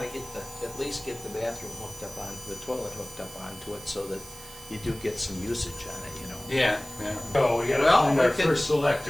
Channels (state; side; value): noise; right; hiss, 16 dB below the sound